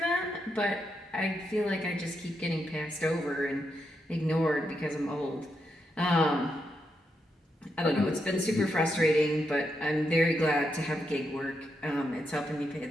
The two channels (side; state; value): both; normal; correlation 0.83